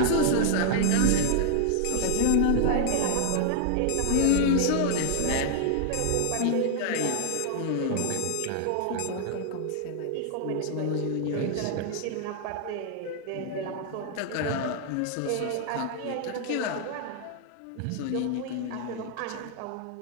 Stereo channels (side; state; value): both; different; correlation 0.00